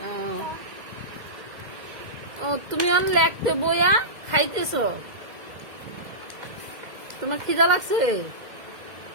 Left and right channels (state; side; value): late; left; 2.0 ms